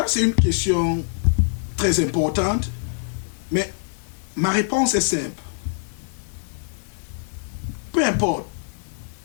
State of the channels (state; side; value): silent; right; 63 dB below the other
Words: c'est une question très importante, mais ma réponse est simple. Peu importe